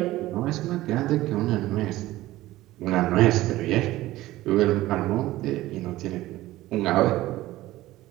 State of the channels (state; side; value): quieter; left; 16.6 dB